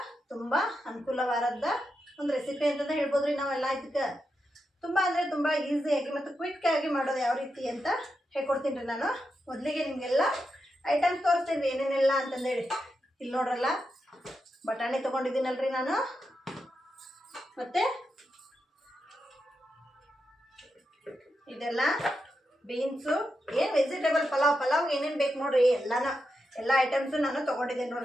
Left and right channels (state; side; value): normal; both; correlation 0.86